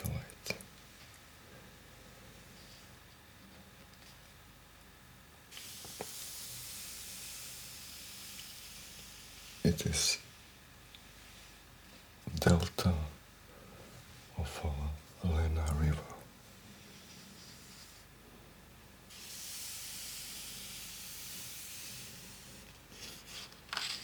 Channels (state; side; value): identical; both; correlation 1.00